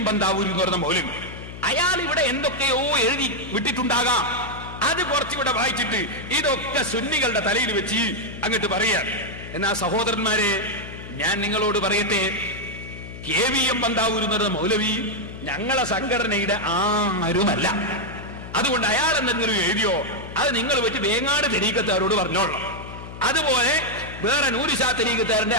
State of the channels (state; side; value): noise; left; hum, 12 dB below the sound